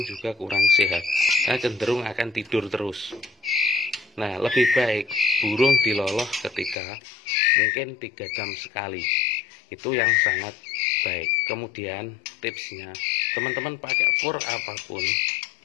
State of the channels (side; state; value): right; drops out; at 6.8 s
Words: juga kurang sehat, karena cenderung akan tidur terus. Nah, lebih baik burung diloloh ketika mungkin 3 jam sekali. Itu yang sangat baik. Kemudian tipsnya, teman-teman pakai fur apapun